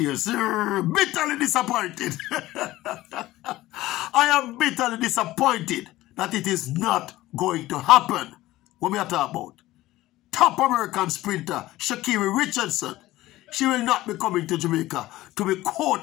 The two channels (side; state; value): right; quieter; 16.7 dB